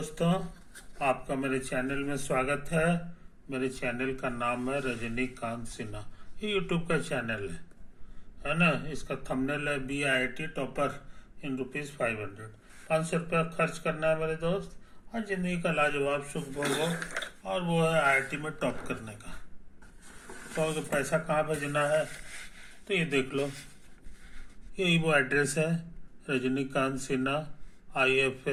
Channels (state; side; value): identical; both; correlation 1.00